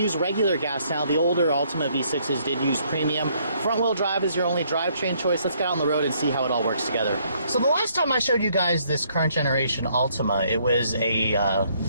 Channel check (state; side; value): inverted; both; correlation -0.67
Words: regular gas now. The older Altima V6s did use premium. Front-wheel drive is your only drivetrain choice. Let's get out on the road and see how it all works together. So the last time I showed you guys this current generation Altima, it was a